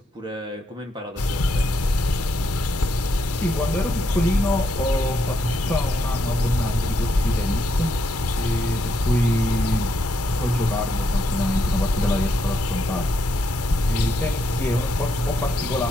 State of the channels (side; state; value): both; normal; correlation 0.78